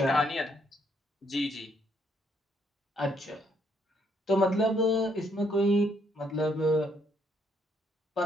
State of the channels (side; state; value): both; normal; correlation 0.71